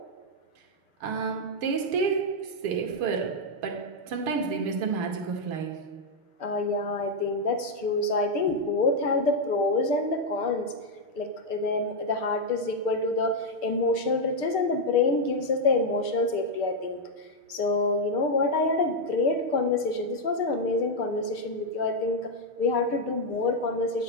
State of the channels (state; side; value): late; left; 6.5 ms